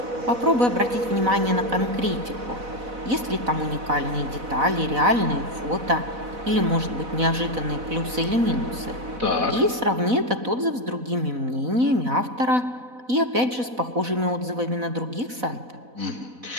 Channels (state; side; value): late; left; 4.0 ms